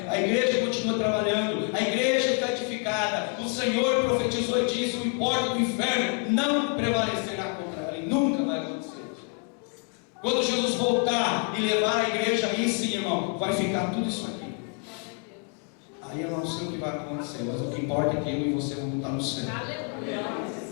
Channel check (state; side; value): quieter; right; 36.6 dB